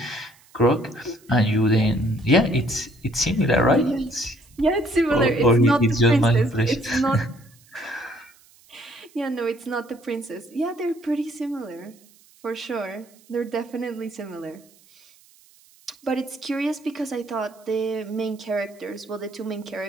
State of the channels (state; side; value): noise; right; hiss, 28 dB below the sound